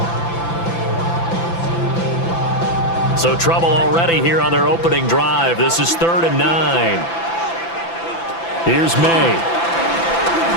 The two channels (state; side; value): late; right; 5.9 ms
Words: So trouble already here on their opening drive. This is 3rd and 9. Here's May.